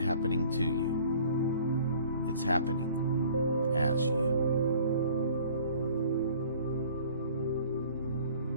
to you. It's happening as you.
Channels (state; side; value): inverted; both; correlation -0.51